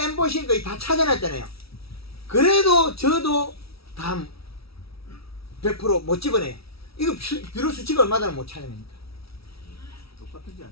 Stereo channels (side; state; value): right; late; 0.76 ms